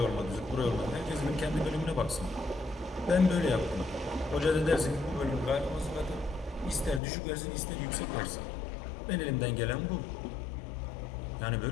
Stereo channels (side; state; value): right; drops out; at 7.0 s